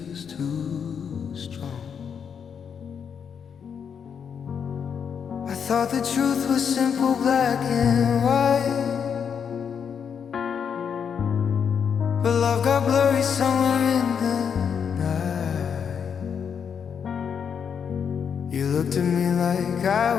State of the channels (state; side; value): quieter; right; 7.2 dB